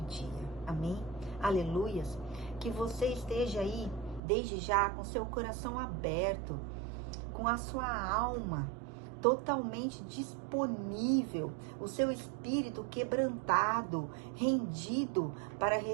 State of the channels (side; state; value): left; drops out; at 4.2 s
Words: Amém? Aleluias. Que você esteja aí, desde já, com seu coração aberto, com a sua alma totalmente disponível, o seu espírito quebrantado, rendido para